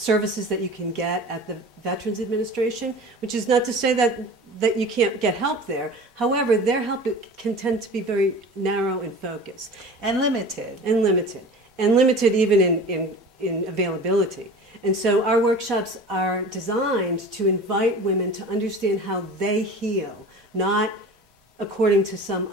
that you can get at the Veterans Administration, which is not to say that you can't get help there. However, their help can tend to be very narrow in focus. And limited. And limited even in availability. And so our workshops are designed to invite women to understand how they heal, not according to some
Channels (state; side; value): normal; both; correlation 0.38